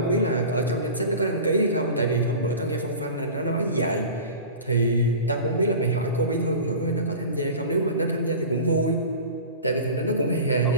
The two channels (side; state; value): both; inverted; correlation -0.35